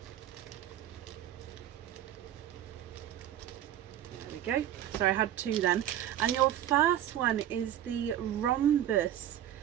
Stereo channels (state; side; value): quieter; left; 11.6 dB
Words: Go. So I had 2 then, and your first one is the rhombus